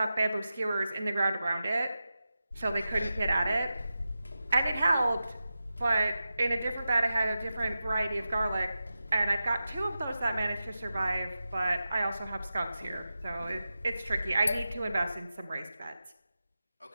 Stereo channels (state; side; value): inverted; both; correlation -0.92